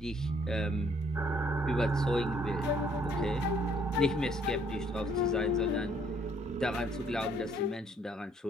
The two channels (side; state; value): both; normal; correlation 0.64